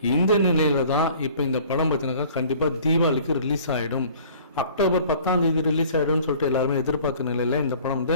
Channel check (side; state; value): both; inverted; correlation -0.50